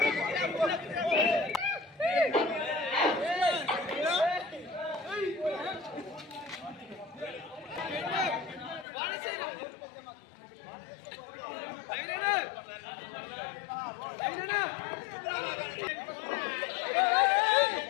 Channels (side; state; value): right; drops out; at 8.8 s